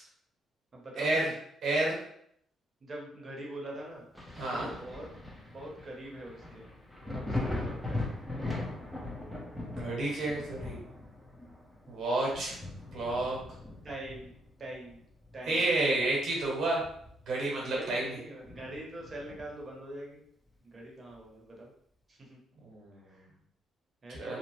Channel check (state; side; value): normal; both; correlation 0.74